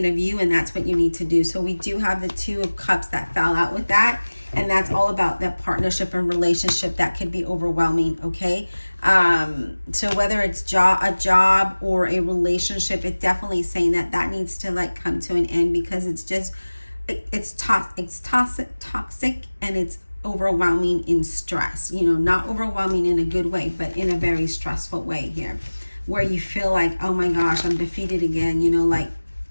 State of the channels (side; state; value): both; inverted; correlation -1.00